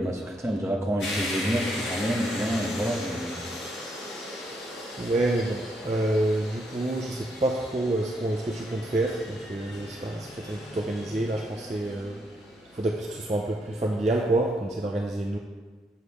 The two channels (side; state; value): both; normal; correlation 0.75